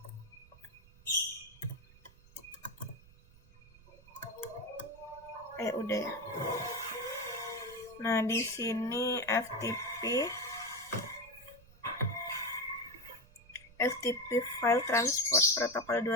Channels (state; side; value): noise; right; rumble, 24 dB below the sound